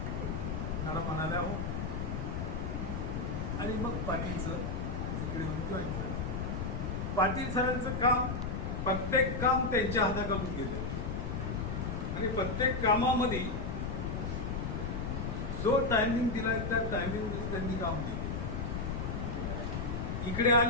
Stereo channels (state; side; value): noise; left; rumble, 2 dB below the sound